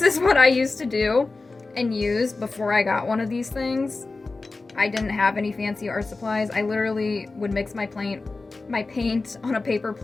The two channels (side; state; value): right; quieter; 3.6 dB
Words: is what I used to do and use before I got one of these things. I didn't have any fancy art supplies. I literally would mix my paint on a paper